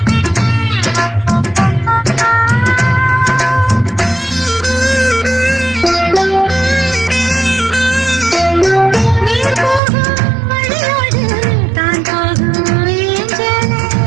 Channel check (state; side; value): drops out; left; at 9.8 s